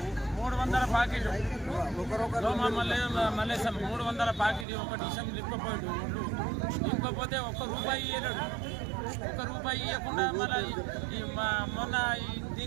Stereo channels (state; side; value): drops out; left; at 4.7 s